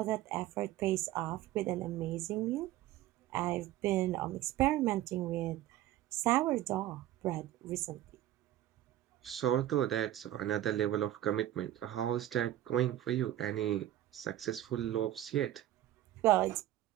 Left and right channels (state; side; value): quieter; left; 13.4 dB